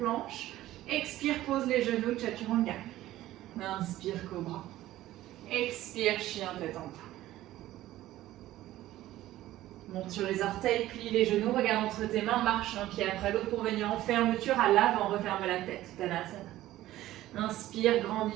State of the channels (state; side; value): quieter; left; 15.0 dB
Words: Expire, pose les genoux, Chaturanga. Inspire, Cobra. Expire, chien tête en bas. Monte sur les orteils, plie les genoux, regarde entre tes mains, marche un pied après l'autre pour venir en fermeture à l'avant, referme la tête. Tadasana. Inspire,